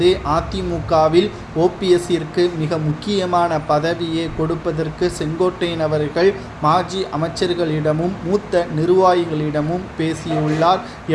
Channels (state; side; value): identical; both; correlation 1.00